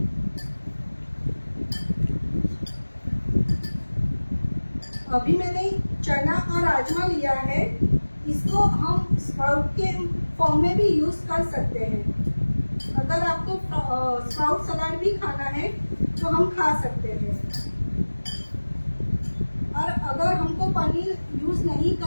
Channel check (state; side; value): inverted; both; correlation -1.00